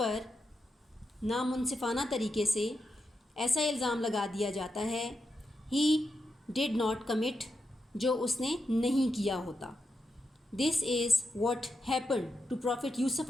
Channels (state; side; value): normal; both; correlation 0.86